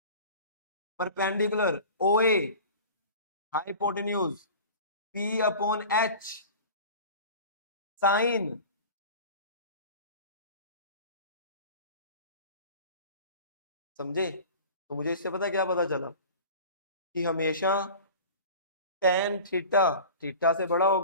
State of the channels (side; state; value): both; inverted; correlation -0.38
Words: perpendicular O A, hypotenuse, P upon H, sine. समझे? तो मुझे इससे पता क्या पता चला, कि हमेशा टेन थीटा थीटा से बड़ा